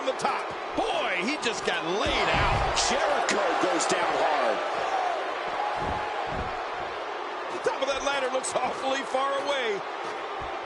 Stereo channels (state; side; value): identical; both; correlation 1.00